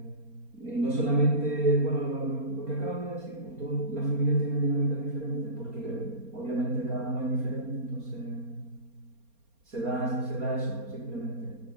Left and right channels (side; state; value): left; late; 4.3 ms